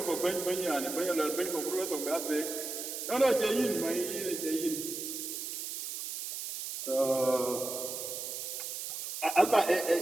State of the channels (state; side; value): noise; right; hiss, 6 dB below the sound